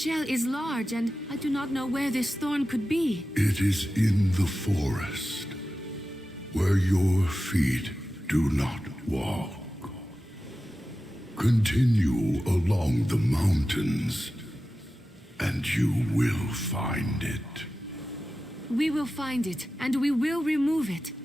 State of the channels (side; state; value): both; normal; correlation 0.93